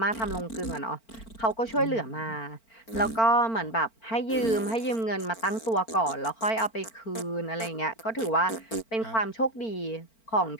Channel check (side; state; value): right; late; 4.4 ms